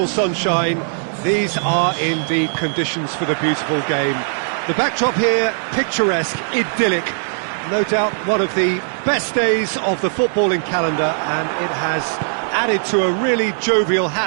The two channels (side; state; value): left; silent; digital silence